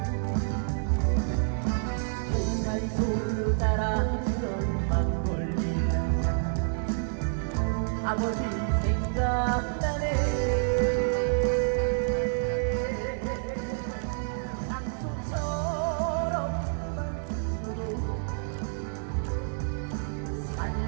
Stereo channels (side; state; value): left; silent; 59 dB below the other